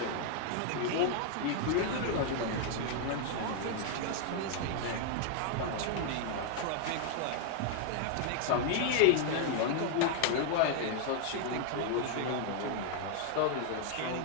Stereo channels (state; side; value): different; both; correlation 0.00